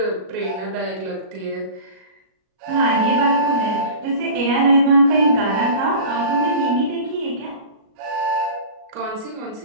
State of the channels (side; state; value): left; late; 37 ms